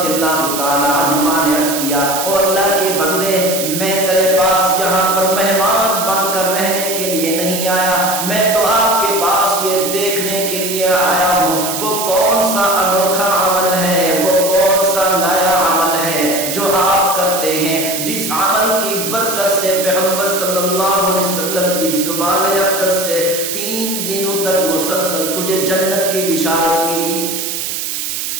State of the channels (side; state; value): right; noise; hiss, 4 dB below the sound